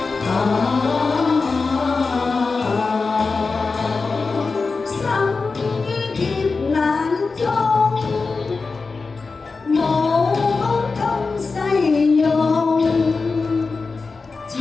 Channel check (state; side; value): quieter; right; 4.3 dB